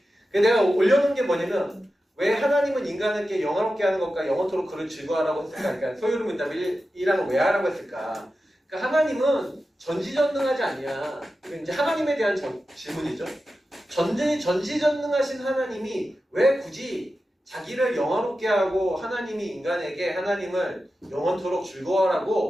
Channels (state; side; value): normal; both; correlation 0.92